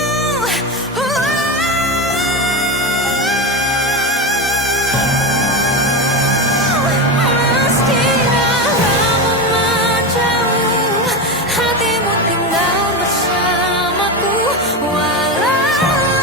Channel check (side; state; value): both; normal; correlation 0.18